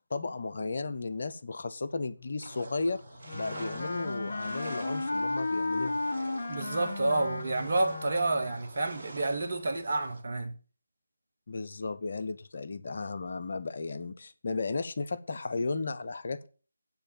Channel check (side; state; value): both; inverted; correlation -0.91